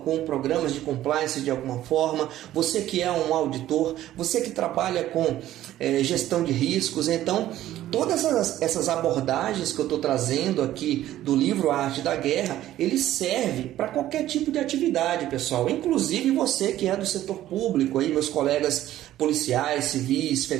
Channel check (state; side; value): quieter; left; 13.5 dB